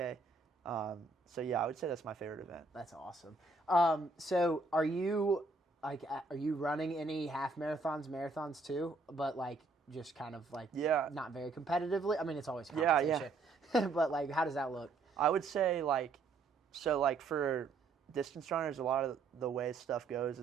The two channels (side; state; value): left; quieter; 3.8 dB